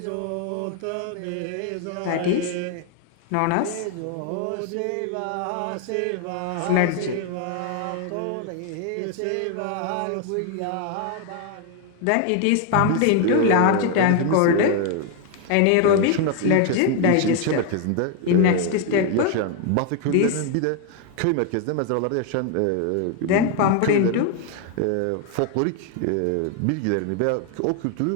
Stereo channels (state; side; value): different; both; correlation 0.01